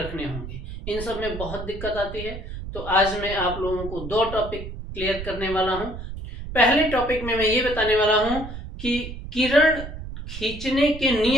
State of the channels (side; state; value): right; noise; rumble, 9 dB below the sound